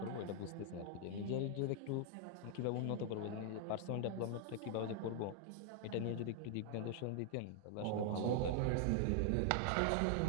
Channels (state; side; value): different; both; correlation 0.00